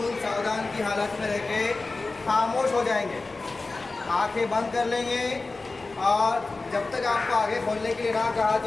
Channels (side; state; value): right; quieter; 3.5 dB